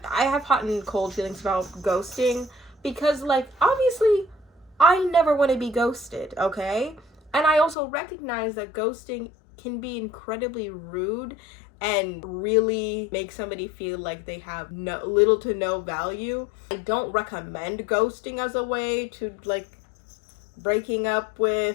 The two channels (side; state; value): right; drops out; at 7.8 s